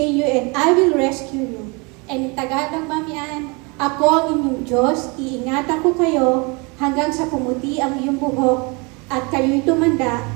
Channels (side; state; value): left; quieter; 29.4 dB